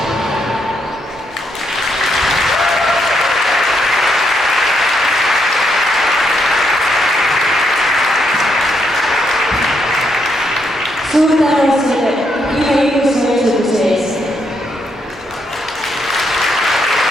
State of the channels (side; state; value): both; normal; correlation 0.77